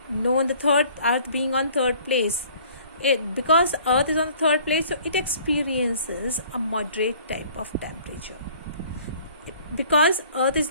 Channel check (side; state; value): both; inverted; correlation -0.53